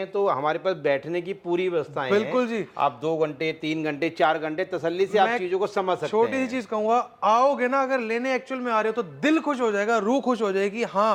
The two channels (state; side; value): identical; both; correlation 1.00